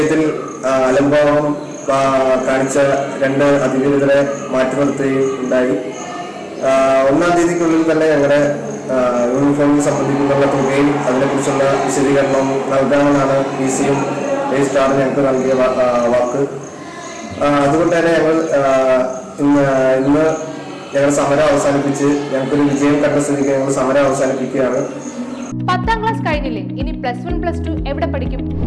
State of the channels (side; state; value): both; identical; correlation 1.00